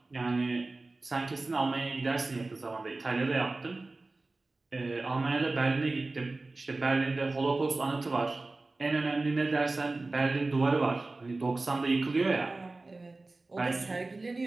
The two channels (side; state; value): left; quieter; 3.3 dB